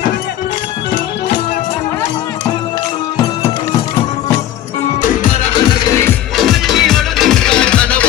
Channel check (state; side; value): quieter; right; 12.4 dB